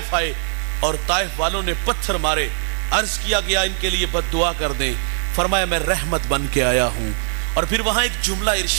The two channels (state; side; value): silent; left; digital silence